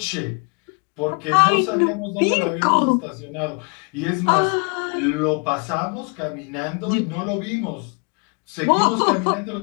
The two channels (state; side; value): quieter; right; 35.6 dB